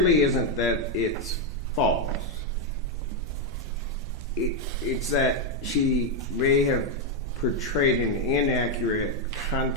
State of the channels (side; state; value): both; normal; correlation 0.01